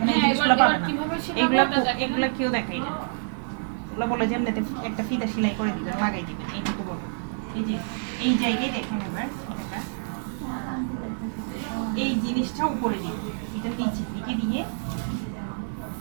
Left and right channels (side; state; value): left; silent; 60 dB below the other